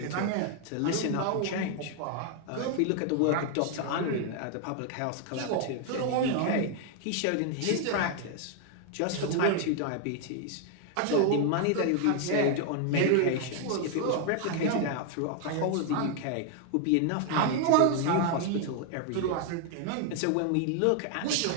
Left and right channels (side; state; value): both; different; correlation 0.00